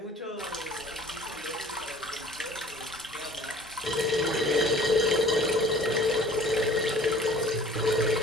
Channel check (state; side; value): normal; both; correlation 0.49